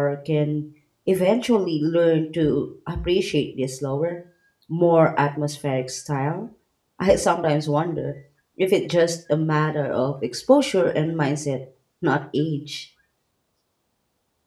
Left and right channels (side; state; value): both; identical; correlation 1.00